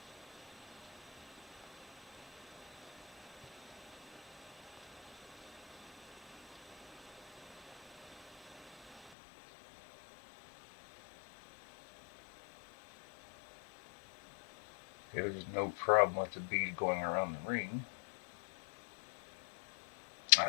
There's no problem with the bead going around the ring. I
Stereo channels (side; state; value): right; drops out; at 9.1 s